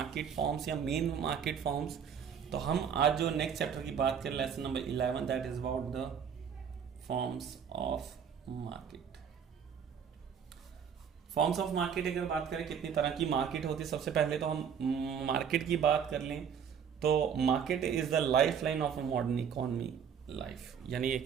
फॉर्म्स या मेन मार्केट फॉर्म्स। तो हम आज जो नेक्स्ट चैप्टर की बात करें lesson number 11 that is about the forms of market. Forms of market अगर बात करें कितनी तरह की मार्केट होती है, सबसे पहले तो हम मार्केट की बात कर लें तो market is the life line of a modern economy life, यानी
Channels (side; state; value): left; quieter; 7.5 dB